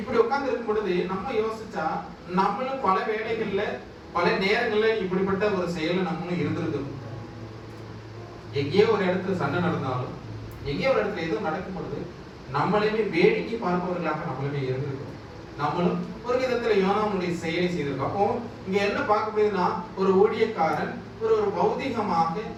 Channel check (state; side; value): identical; both; correlation 1.00